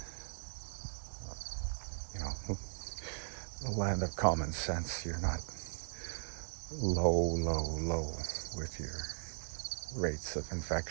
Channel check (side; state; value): left; silent; digital silence